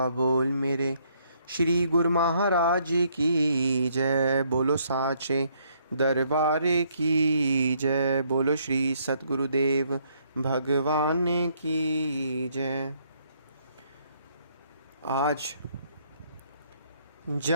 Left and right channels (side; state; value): both; inverted; correlation -0.69